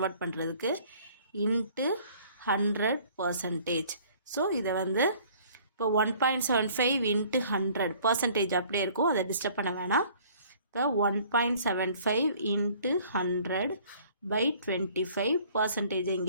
பண்ணுறதுக்கு இன்ட்டு 100%. ஸோ இதை இப்போ 1.75 இன்ட்டு 100 பர்சன்டேஜ் அப்படியே இருக்கும், அதை டிஸ்டர்ப் பண்ண வேணாம். இப்போ 1.75 இன்ட்டு 100 பை 25 பர்சன்டேஜை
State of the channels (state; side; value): inverted; both; correlation -0.54